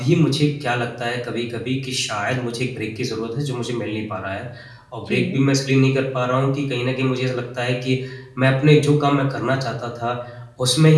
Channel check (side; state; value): both; identical; correlation 1.00